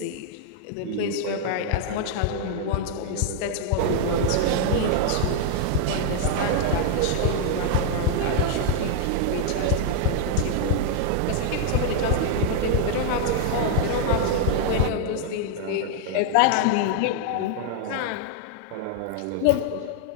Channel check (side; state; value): both; different; correlation 0.00